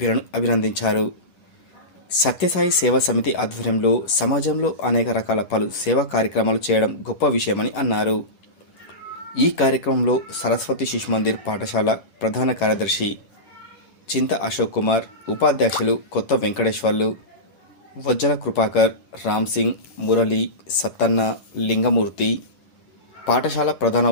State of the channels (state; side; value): late; right; 11 ms